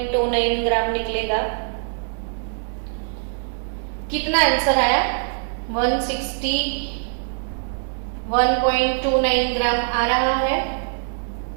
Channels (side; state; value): left; silent; digital silence